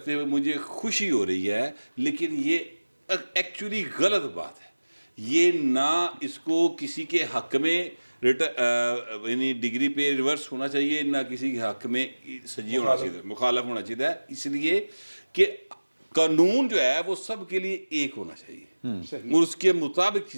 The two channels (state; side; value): inverted; both; correlation -1.00